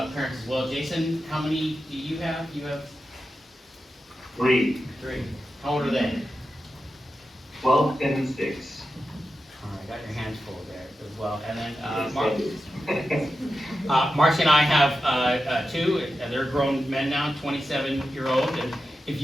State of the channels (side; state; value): both; normal; correlation 0.91